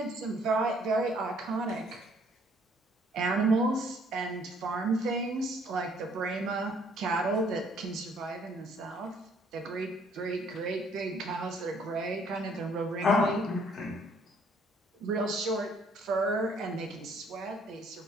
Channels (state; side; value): normal; both; correlation 0.63